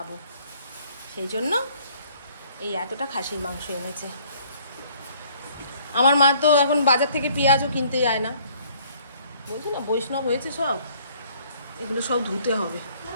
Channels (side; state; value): both; inverted; correlation -0.60